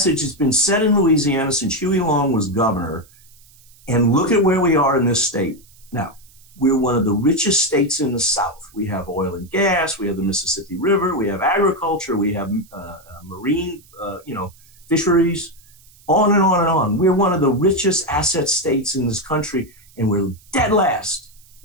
that's been said in Louisiana since Huey Long was governor. And look at where we are in this state. Now, we're one of the richest states in the South. We have oil and gas. We have the Mississippi River. We have agriculture. We have marine, fisheries, on and on and on. We're one of the richest asset states in this country, and we're dead last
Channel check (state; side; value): noise; right; hiss, 27 dB below the sound